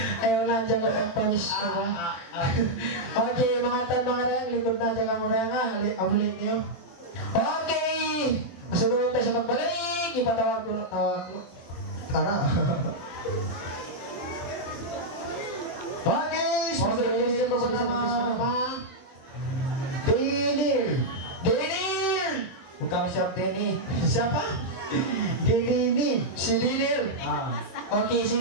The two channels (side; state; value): right; late; 23 ms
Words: Ayaw na dyan ko pagpanis ko ba? Okay, mga tan mga reyang, likod na dyan ka mo reyang ha. Amulit niyo. Okay! Masunod tayo sa magbalik. Ipatawag ko. Tara. Okay! Okay, ito ko naman. Denil! Denil! Bukan siap Denny. Siapa? Denny. Si Denil. Okay, si